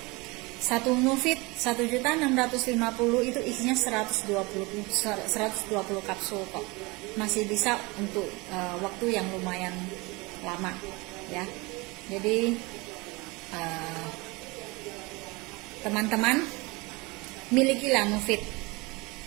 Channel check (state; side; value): quieter; left; 25.1 dB